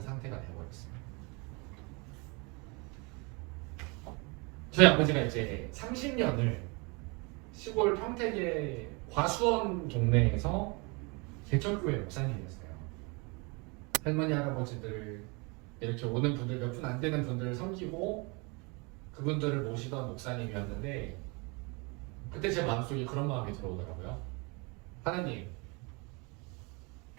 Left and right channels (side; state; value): left; quieter; 29.7 dB